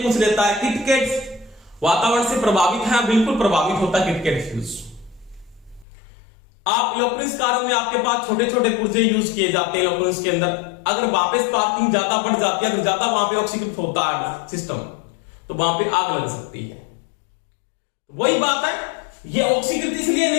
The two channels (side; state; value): right; drops out; at 5.9 s